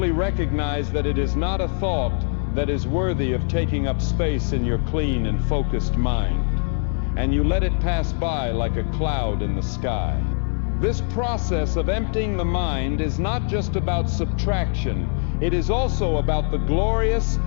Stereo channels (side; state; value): right; silent; 64 dB below the other